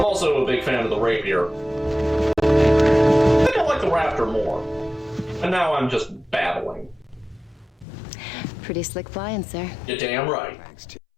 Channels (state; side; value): drops out; right; at 7.9 s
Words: also a big fan of the Rapier. I think I like the Raptor more. And now I'm just babbling. Pretty slick flying, sir. You're damn right. Thanks, Tim.